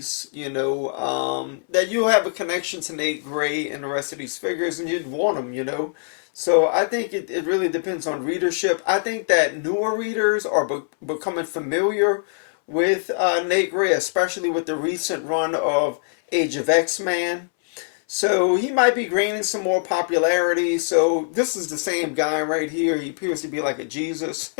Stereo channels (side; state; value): right; silent; 64 dB below the other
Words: you know, that you'll have a connection to Nate Gray and the rest of these figures, and you'd want them, you know. So I think it really depends on readership. I think that newer readers are becoming familiar with Nate Gray, especially with the recent run of Age of X-Men. So he might be gaining some more popularity. So this is the same guy right here. He appears to be like a Jesus